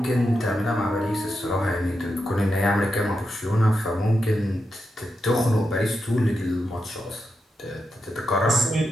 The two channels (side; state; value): both; normal; correlation 0.86